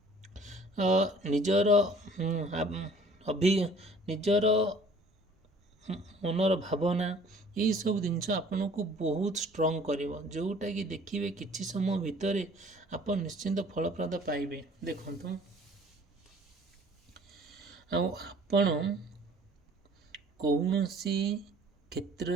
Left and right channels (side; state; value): both; normal; correlation 0.52